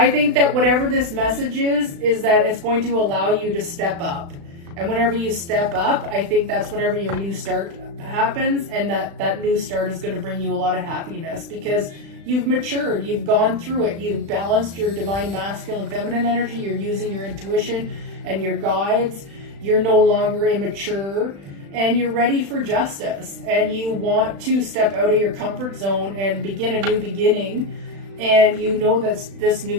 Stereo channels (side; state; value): left; late; 36 ms